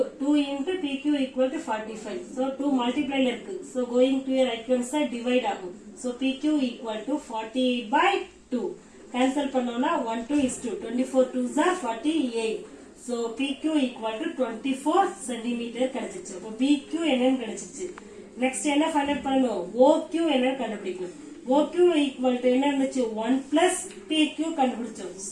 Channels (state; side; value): identical; both; correlation 1.00